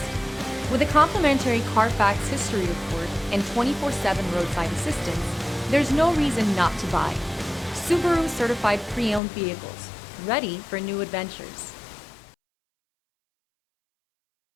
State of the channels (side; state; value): right; drops out; at 9.2 s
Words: With a complimentary Carfax history report and 24/7 roadside assistance, there's no reason not to buy. Subaru certified pre-owned vehicles, ready for new adventures.